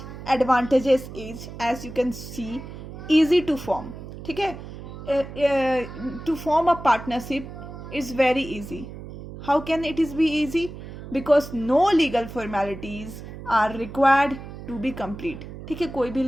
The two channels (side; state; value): right; noise; hum, 12 dB below the sound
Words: advantages is, as you can see, easy to form. ठीक है, to form a partnership is very easy. How can it is be easy? Because no legal formalities are required to be complete. ठीक है, कोई भी